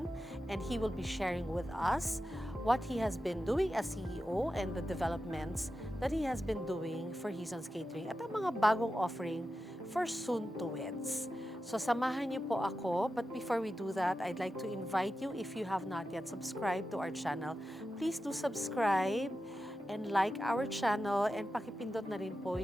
and he will be sharing with us what he has been doing as CEO and the developments that he has been doing for Hizon's Catering at ang mga bagong offering for soon-to-weds. So samahan niyo po ako, but before we do that, I'd like to invite you, if you have not yet subscribed to our channel, please do subscribe and like our channel and pakipindot na rin po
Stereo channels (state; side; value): normal; both; correlation 0.91